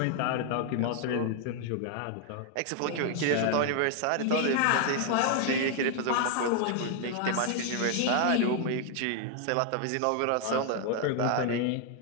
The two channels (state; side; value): different; both; correlation 0.00